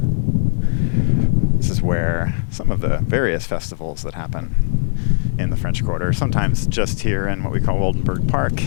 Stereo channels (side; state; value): right; silent; digital silence